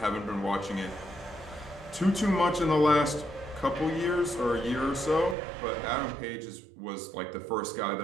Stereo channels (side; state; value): left; drops out; at 5.4 s